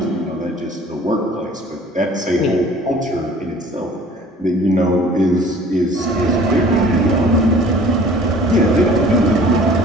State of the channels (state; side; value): normal; both; correlation 0.50